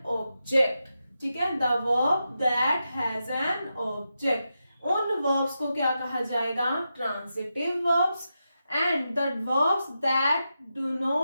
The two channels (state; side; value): inverted; both; correlation -0.88